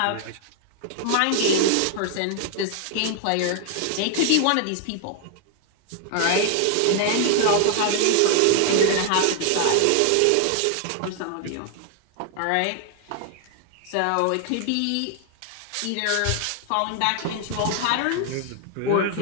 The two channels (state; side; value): different; both; correlation 0.00